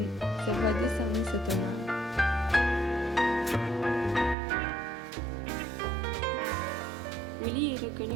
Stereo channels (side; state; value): left; drops out; at 4.4 s